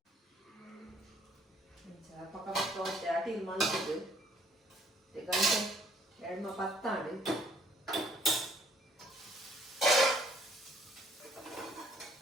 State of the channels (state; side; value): normal; both; correlation 0.61